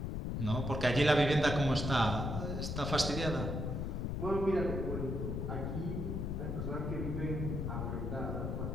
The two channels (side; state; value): left; noise; rumble, 2 dB below the sound